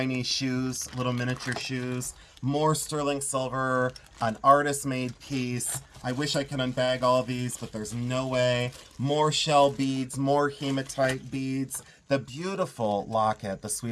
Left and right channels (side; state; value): both; identical; correlation 1.00